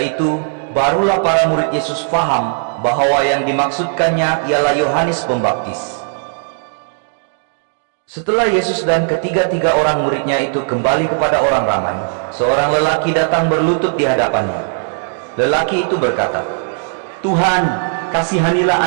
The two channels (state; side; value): silent; left; digital silence